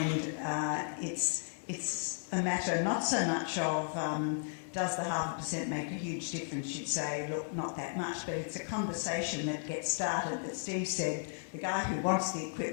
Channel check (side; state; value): right; silent; digital silence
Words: it's a matter not so much of does the 0.5% make a huge difference? You'd say, look, not that much, but it's a conversation that gets started that Steve said, the guy who wants the